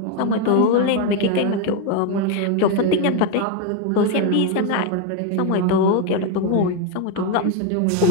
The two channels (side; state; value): both; different; correlation 0.02